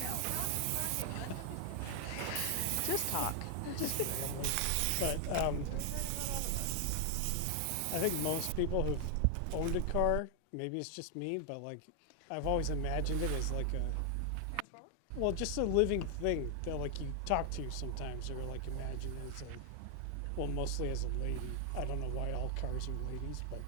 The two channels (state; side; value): different; both; correlation 0.00